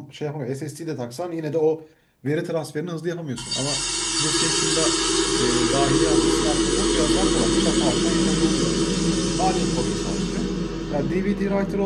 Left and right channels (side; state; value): both; identical; correlation 1.00